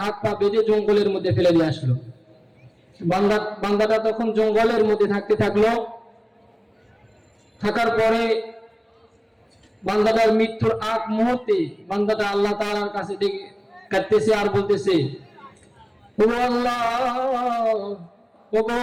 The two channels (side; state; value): both; identical; correlation 1.00